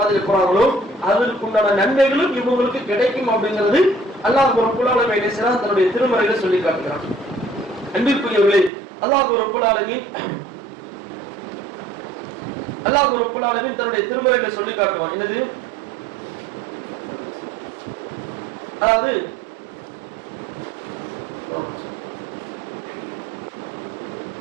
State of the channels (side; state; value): left; drops out; at 8.7 s